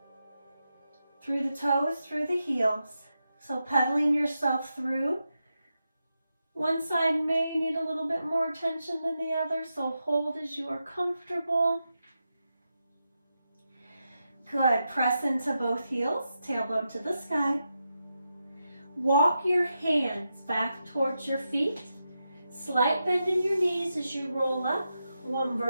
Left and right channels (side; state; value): both; inverted; correlation -0.87